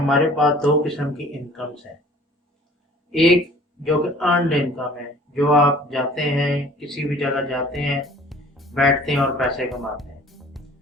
पास दो किस्म की इनकम्स हैं। एक जो कि अर्नड इनकम है, जो आप जाते हैं, किसी भी जगह जाते हैं, बैठते हैं और पैसे कमाते हैं,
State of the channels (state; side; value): normal; both; correlation 0.50